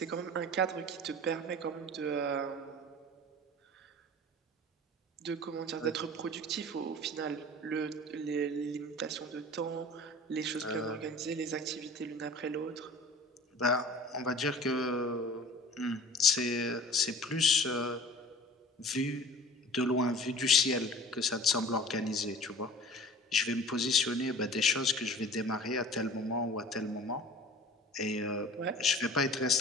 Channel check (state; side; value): normal; both; correlation 0.42